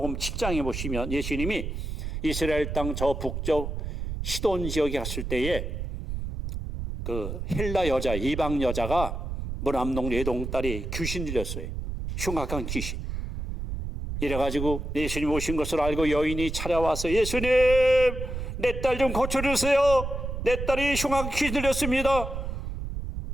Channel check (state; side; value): noise; right; rumble, 5 dB below the sound